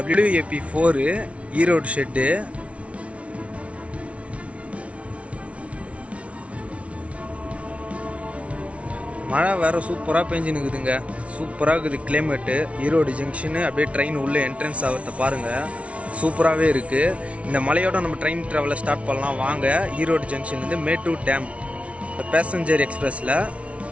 WAP4 Erode shed. மழை வேறு சூப்பராக பெஞ்சுன்னுக்குதுங்க. சூப்பராக இருக்குது கிளைமேட்டு. ஈரோடு ஜங்ஷனு அப்படியே ட்ரெயின் உள்ளே என்ட்ரன்ஸ் ஆகிறத பாருங்கள், சூப்பராகவே இருக்குது. இந்த மலையோட நம்ம ட்ரெயின் ட்ராவலை ஸ்டார்ட் பண்ணலாம் வாங்க. ஈரோடு ஜங்ஷன்லேருந்து மேட்டூர் டேம் பேசஞ்சர் எக்ஸ்பிரஸில்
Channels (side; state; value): left; late; 0.063 ms